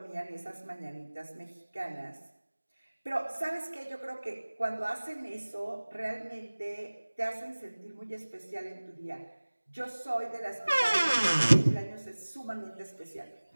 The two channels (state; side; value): inverted; both; correlation -1.00